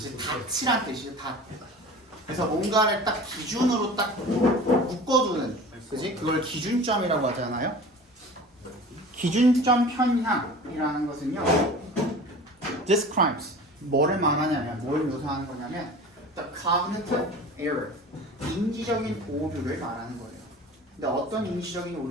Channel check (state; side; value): normal; both; correlation 0.39